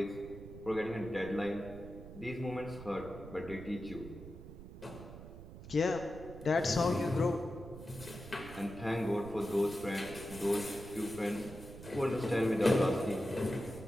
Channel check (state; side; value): noise; right; rumble, 13 dB below the sound